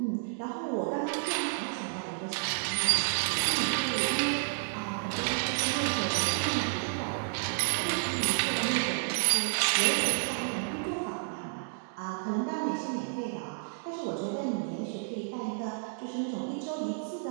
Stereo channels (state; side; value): silent; left; digital silence